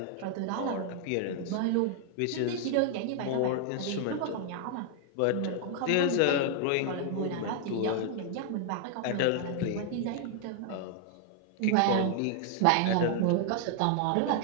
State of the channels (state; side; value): different; both; correlation 0.00